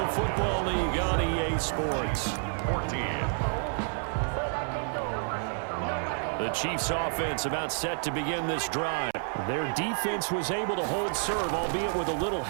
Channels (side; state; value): left; silent; 58 dB below the other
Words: Football League on EA Sports. 14. The Chiefs offense about set to begin this drive. Their defense was able to hold serve, albeit with a little